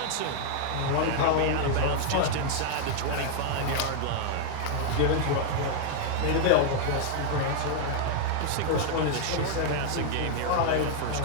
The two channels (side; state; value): both; different; correlation 0.00